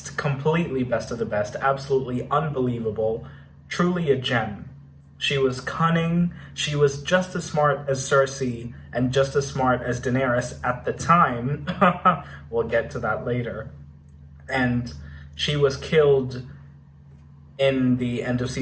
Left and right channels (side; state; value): both; identical; correlation 1.00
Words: Completely best of the best. Absolutely unbelievable. Truly a gem. She was cunning. She was just as smart as Cersei and just as smart as Daenerys at the time. We'll get to that later. And she was killed in the end of